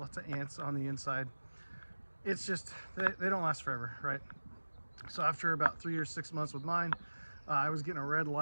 of ants on the inside, it's just, they don't last forever, right? So after about 3 or 6 months with mine, I was getting a red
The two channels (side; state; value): both; inverted; correlation -1.00